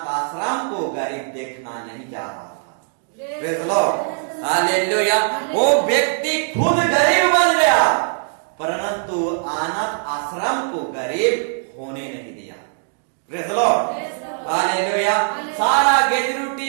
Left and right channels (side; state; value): left; silent; digital silence